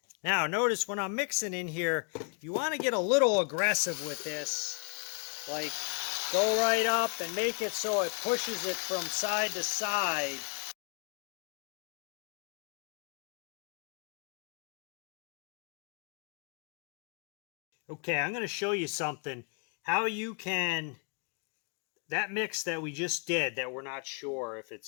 Now notice when I'm mixing in here, you want to get a little aggressive with this. Like go right up and make it so it pushes it from side to side. Okay, I'm going to show you something. How you can, that mix that we just did that we're not sure if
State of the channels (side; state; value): right; quieter; 38.6 dB